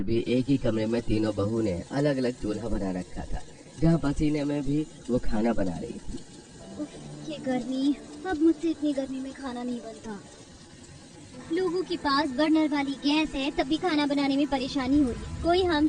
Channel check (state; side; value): identical; both; correlation 1.00